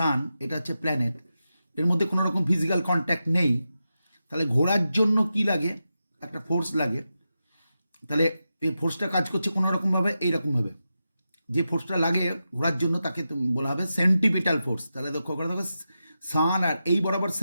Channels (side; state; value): both; inverted; correlation -0.90